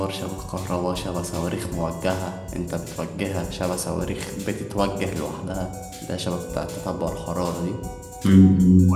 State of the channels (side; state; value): both; identical; correlation 1.00